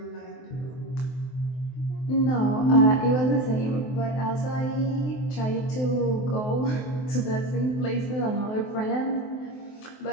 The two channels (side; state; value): right; late; 23 ms